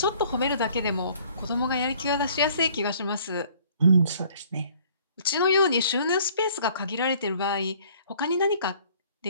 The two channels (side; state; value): both; inverted; correlation -0.57